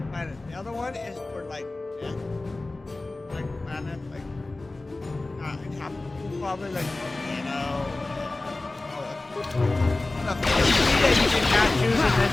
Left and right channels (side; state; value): right; quieter; 3.0 dB